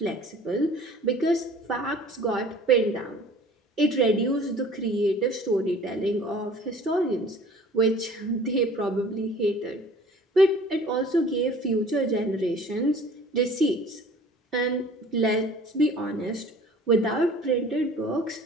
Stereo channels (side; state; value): both; normal; correlation 0.48